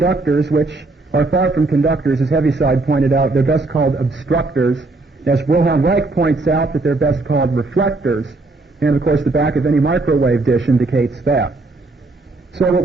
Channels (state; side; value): quieter; left; 3.3 dB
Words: which are far from conductors, as Heaviside pointed out, they're best called obstructors. As Wilhelm Reich points out, that they're best called reflectors. And, of course, the back of any microwave dish indicates that. So what